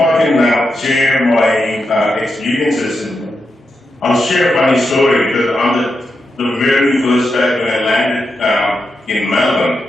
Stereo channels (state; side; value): normal; both; correlation 0.86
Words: can share my experiences, I'll share a funny story because on the very first time when I landed in Melbourne,